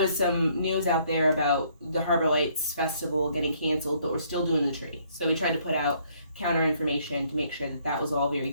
some news out there about the Harbor Lights Festival getting canceled, but we're still doing the tree. So we tried to put out counter information to make sure that was all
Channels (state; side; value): inverted; both; correlation -0.66